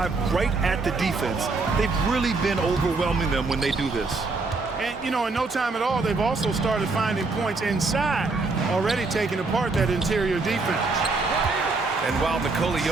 right at the defense, they've really been overwhelming them when they do this. And, you know, in no time at all, they've also started finding points inside, already taking apart that interior defense. And while Nikola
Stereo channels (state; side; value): quieter; left; 3.8 dB